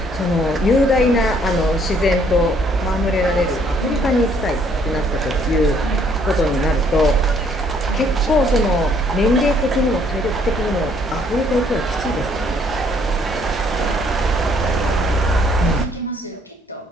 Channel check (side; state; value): both; normal; correlation 0.65